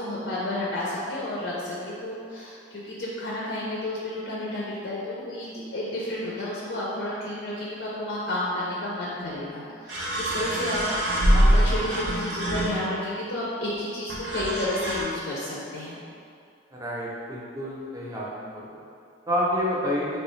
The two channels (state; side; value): normal; both; correlation 0.48